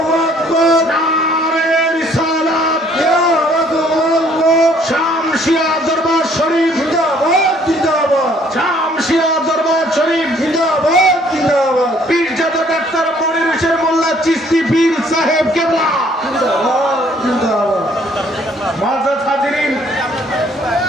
আকবার, নারে রিসালাত, ইয়া রাসূলুল্লাহ। শামসিয়া দরবার শরীফ জিন্দাবাদ, জিন্দাবাদ। শামসিয়া দরবার শরীফ জিন্দাবাদ, জিন্দাবাদ। পীরজাদা ডাক্তার মনির হোসেন মোল্লা চিশতি পীর সাহেব কেবলা জিন্দাবাদ, জিন্দাবাদ। মুআজ্জাজ হাজিরিন,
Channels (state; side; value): normal; both; correlation 0.61